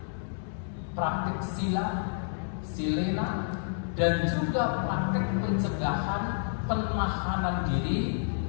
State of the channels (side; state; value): right; silent; digital silence